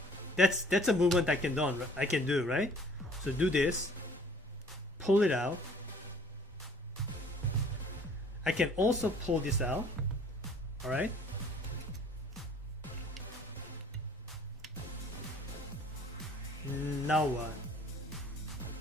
that's a movement I can do, right? So do this, pull it out. I can also pull this out. Alright, now what?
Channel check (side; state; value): both; normal; correlation 0.54